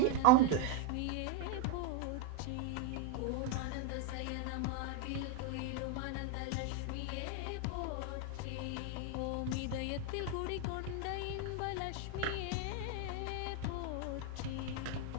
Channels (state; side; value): different; both; correlation 0.01